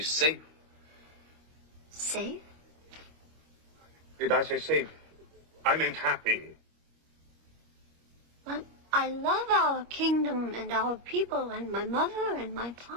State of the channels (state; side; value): late; left; 25 ms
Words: Safe? Did I say safe? I meant happy. But I love our kingdom and our people and my mother and my